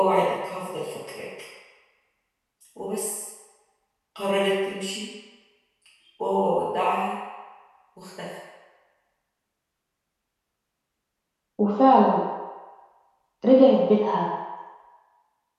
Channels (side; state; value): both; identical; correlation 1.00